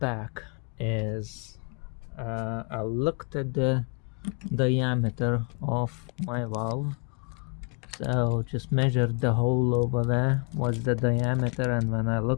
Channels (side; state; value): right; quieter; 38.4 dB